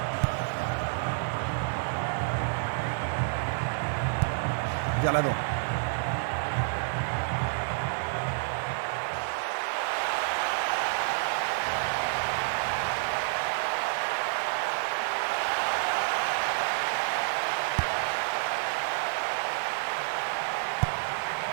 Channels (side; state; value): left; silent; digital silence